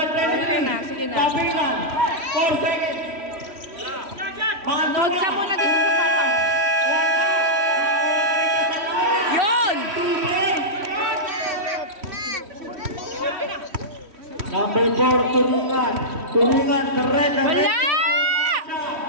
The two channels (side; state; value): left; late; 3.1 ms